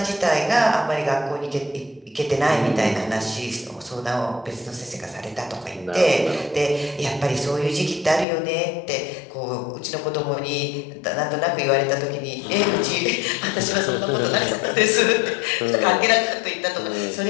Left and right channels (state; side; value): drops out; right; at 8.2 s